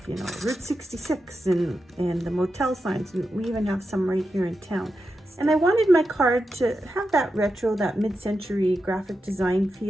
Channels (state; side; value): normal; both; correlation 0.89